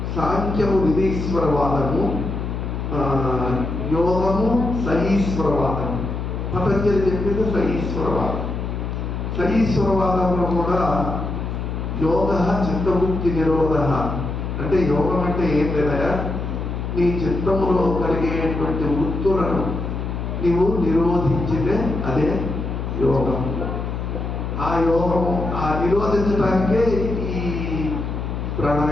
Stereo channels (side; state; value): left; noise; hum, 4 dB below the sound